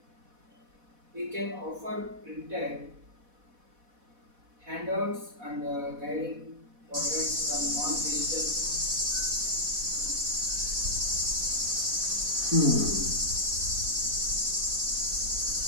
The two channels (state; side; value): late; left; 4.1 ms